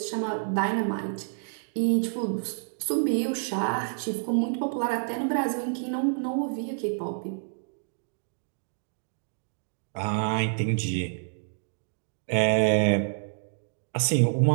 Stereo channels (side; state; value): left; silent; digital silence